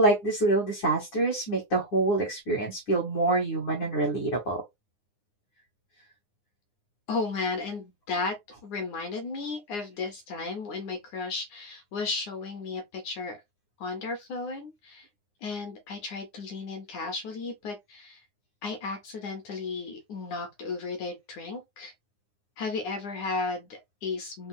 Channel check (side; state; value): right; late; 9.7 ms